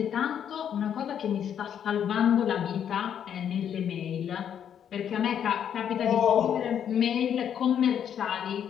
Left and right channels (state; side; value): quieter; right; 8.9 dB